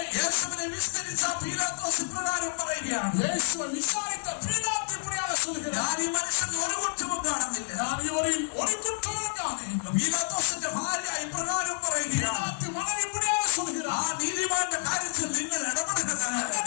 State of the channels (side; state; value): right; silent; digital silence